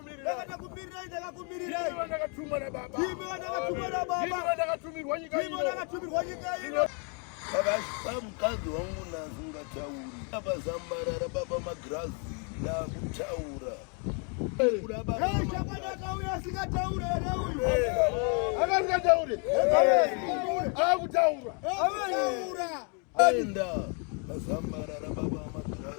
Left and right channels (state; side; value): quieter; right; 38.0 dB